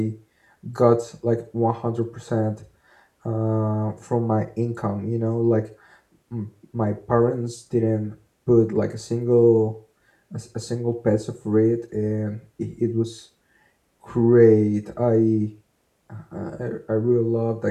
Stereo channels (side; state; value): both; identical; correlation 1.00